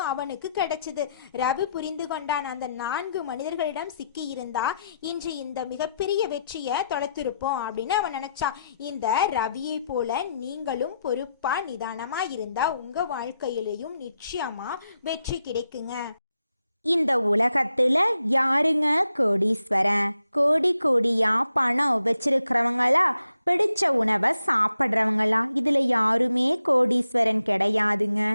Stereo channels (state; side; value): inverted; both; correlation -0.82